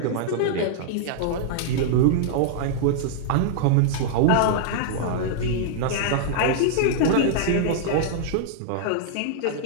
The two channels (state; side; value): different; both; correlation -0.01